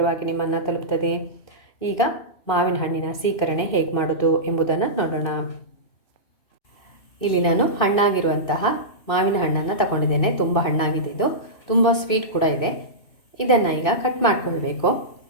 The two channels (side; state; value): right; late; 2.6 ms